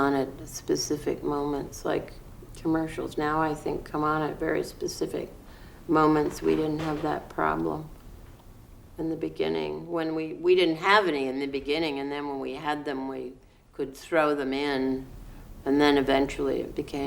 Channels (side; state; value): both; identical; correlation 1.00